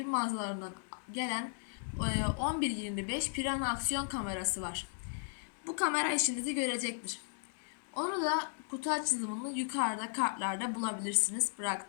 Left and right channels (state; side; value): silent; right; digital silence